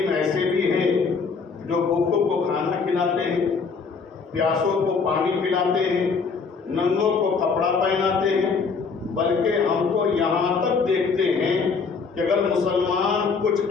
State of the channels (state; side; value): quieter; right; 5.0 dB